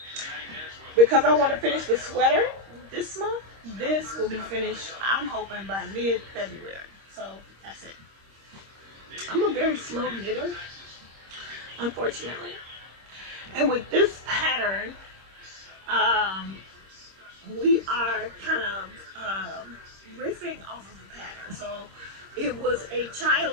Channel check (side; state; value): left; late; 26 ms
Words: because I want to finish the sweater this month, this will be finished, I'm hoping, by mid-February. So that's it. I'm a very slow knitter, unfortunately. And with this pattern, we are kind of riffing off of the pattern. So it was a